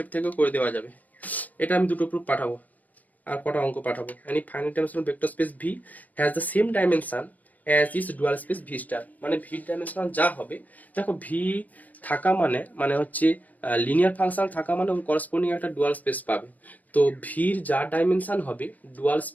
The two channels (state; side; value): late; right; 0.078 ms